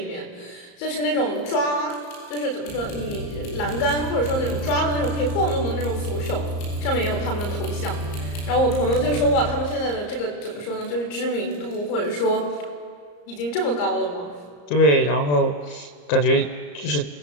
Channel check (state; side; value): late; right; 34 ms